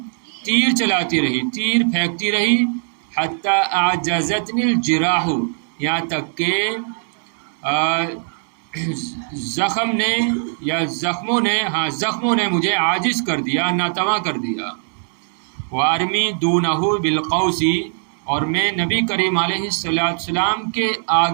تیر چلاتی رہی، تیر پھینکتی رہی. حتی اعجزتنی الجراح، یہاں تک کہ زخم نے یا زخموں نے مجھے عاجز کر دیا، ناتواں کر دیا. وارمی دونہ بالقوسی، اور میں نبی کریم علیہ السلام کے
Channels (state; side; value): silent; left; 66 dB below the other